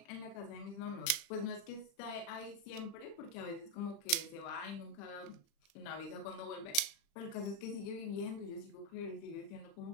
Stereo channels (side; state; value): right; late; 35 ms